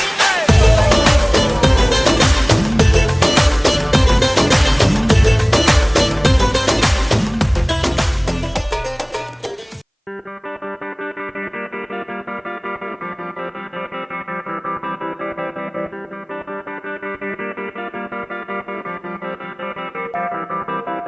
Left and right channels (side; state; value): both; identical; correlation 1.00